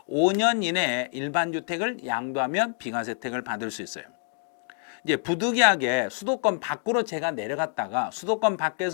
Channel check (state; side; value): silent; right; digital silence